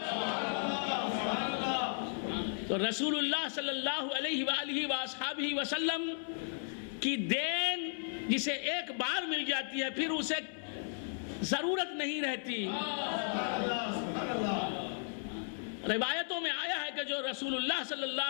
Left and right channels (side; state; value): right; silent; 54 dB below the other